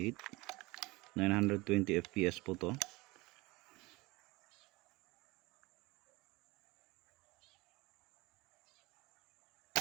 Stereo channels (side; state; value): left; quieter; 22.6 dB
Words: 920 fps po to.